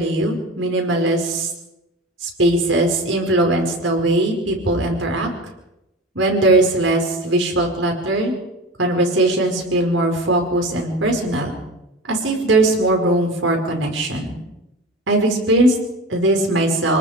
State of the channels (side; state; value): both; normal; correlation 0.31